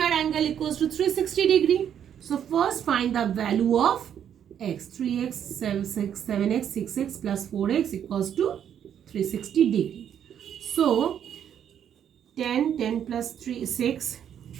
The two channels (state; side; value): quieter; left; 9.2 dB